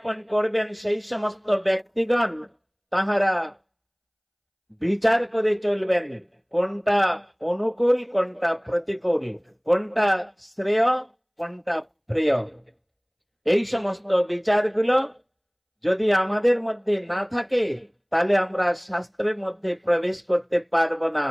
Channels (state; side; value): identical; both; correlation 1.00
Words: করবেন, সেই সমস্ত ব্যক্তিগণ তাহারা বিচার করে চলবেন কোনটা অনুকূল, কোনটা প্রতিকূল, কোনটা শ্রেয়, কোনটা প্রিয়। এই সমস্ত বিচারগুলো যদি আমাদের মধ্যে না থাকে তাহলে আমরা শাস্ত্রের মধ্যে প্রবেশ করতে পারবো না।